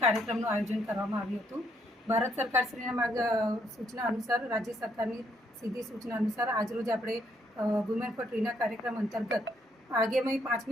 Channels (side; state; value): both; normal; correlation 0.72